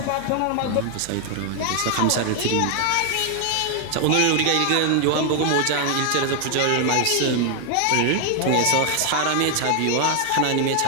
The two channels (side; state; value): both; different; correlation 0.00